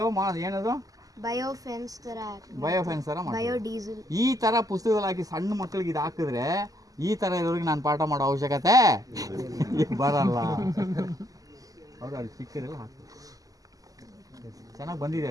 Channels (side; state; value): left; late; 0.17 ms